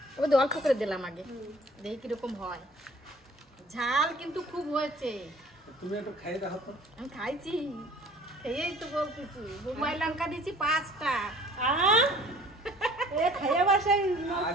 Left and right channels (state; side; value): normal; both; correlation 0.51